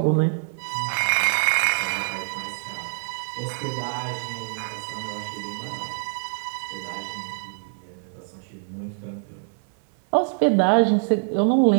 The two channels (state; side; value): silent; left; 57 dB below the other